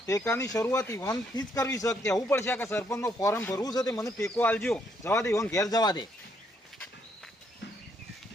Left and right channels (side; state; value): both; normal; correlation 0.73